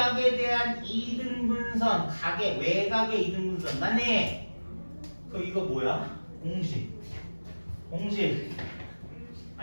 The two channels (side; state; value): both; inverted; correlation -1.00